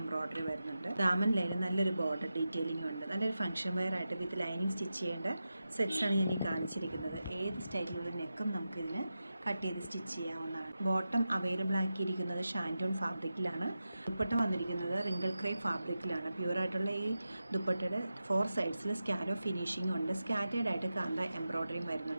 വരുന്നുണ്ട്. ദാമൻ ലൈനിൽ നല്ലൊരു ബോർഡർ ഡീറ്റെയിലിംഗ് ഉണ്ട്. നല്ലൊരു ഫംഗ്ഷൻ വെയർ ആയിട്ട് വിത്ത് ലൈനിങ് സ്റ്റിച്ച് ചെയ്യേണ്ട സെറ്റ്സാണ് ഞാൻ ഈ കാണിച്ചിരിക്കുന്നത്. ഏത് സ്റ്റൈലിലുള്ള നെക്കും നമുക്കിതിന് കട്ട് ചെയ്ത് സ്റ്റിച്ച് ചെയ്യാവുന്നതാണ്. ബോട്ടം അവൈലബിൾ ആക്കിയിരിക്കുന്നത് ഷാൻറ്റൂൺ ഫാബ്രിക്കിലാണ്. ദുപ്പട്ട വന്നിരിക്കുന്നത് റിങ്കിൾ ക്രേപ്പ് ഫാബ്രിക്കിലാണ്. പ്യുവറായിട്ടുള്ള ഈ ദുപ്പട്ടയുടെ 4 സൈഡ്സിൽ സ്കാലോ ഫിനിഷിംഗ് ഉണ്ട്. സ്കാറ്റേഡ് ആയിട്ട് കാന്ത എംബ്രോയ്ഡറിയും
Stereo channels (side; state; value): both; inverted; correlation -0.92